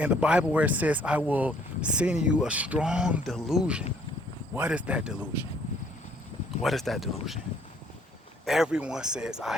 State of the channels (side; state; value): both; normal; correlation 0.62